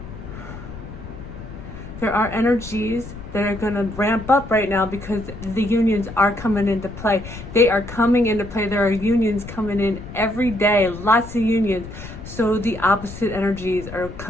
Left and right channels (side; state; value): left; noise; rumble, 12 dB below the sound